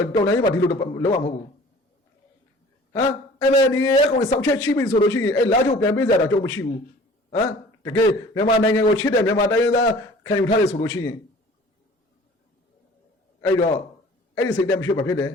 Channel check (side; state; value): both; normal; correlation 0.48